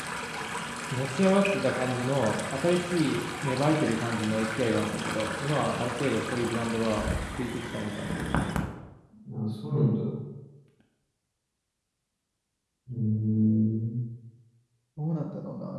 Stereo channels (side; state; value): both; identical; correlation 1.00